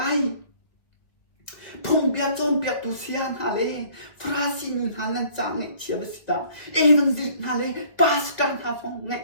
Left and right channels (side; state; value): right; late; 1.8 ms